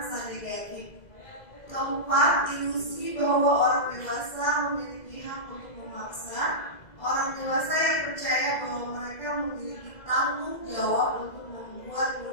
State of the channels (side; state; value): right; late; 2.0 ms